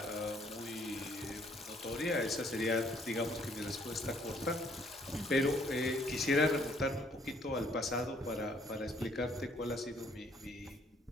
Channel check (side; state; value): both; normal; correlation 0.64